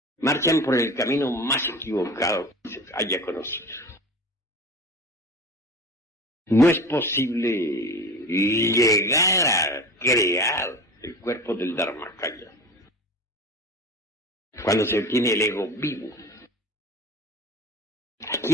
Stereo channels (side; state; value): both; normal; correlation 0.34